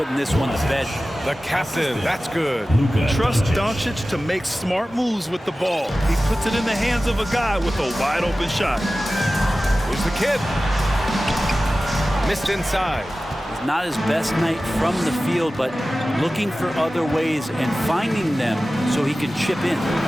this one to bed. The captain. That's good. Trust Doncic to make smart moves with the ball. He puts it in the hands of a guy with a wide open shot. Here's the kid. Missed inside. It's not his best night from the field, but looking for other ways and finding them so he can chip in.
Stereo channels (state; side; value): normal; both; correlation 0.96